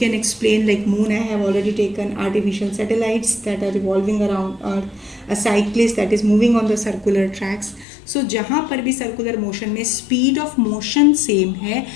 explain, like moon I have already taken, artificial satellites that are revolving around earth, a cyclist that is moving on the circular tracks. So जहाँ पर भी circular motion में speed of motion same है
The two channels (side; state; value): right; drops out; at 7.9 s